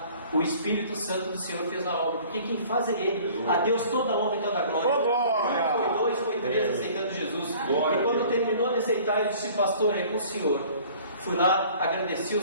o Espírito Santo do Senhor fez a obra, porque quem faz é Ele. A Deus toda a honra e toda a glória. Foi 2, foi 3 aceitando Jesus. E quando terminou de aceitar, eu disse, pastor, é com o Senhor. Fui lá, agradeci o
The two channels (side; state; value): both; inverted; correlation -0.50